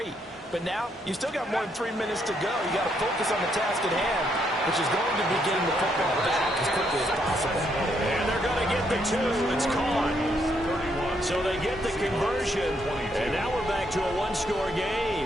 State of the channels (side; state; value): both; normal; correlation 0.74